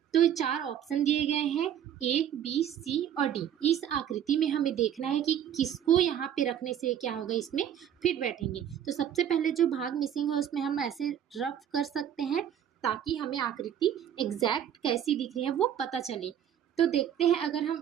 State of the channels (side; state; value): left; quieter; 9.7 dB